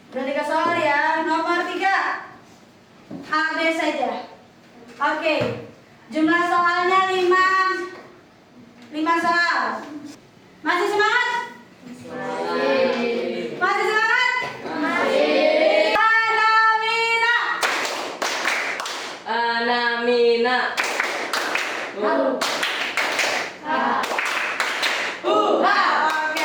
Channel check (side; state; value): both; identical; correlation 1.00